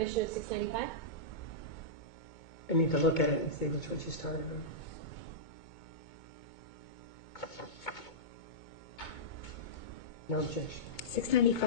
of 695. I need to look at it and see which one she started on. No objection.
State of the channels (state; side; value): late; right; 2.2 ms